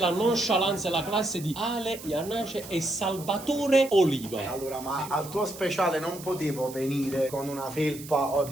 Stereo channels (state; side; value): noise; right; hiss, 15 dB below the sound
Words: nonchalance e la classe di Ale Iannace e Salvatore Oliva. Allora, ma al tuo speciale non potevo venire con una felpa o